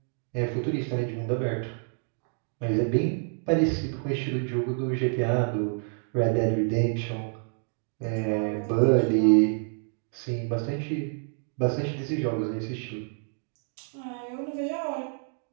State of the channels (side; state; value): left; silent; 59 dB below the other